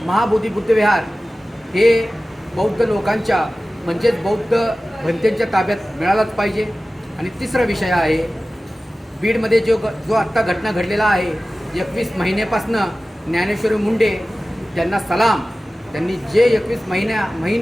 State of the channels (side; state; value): both; normal; correlation 0.96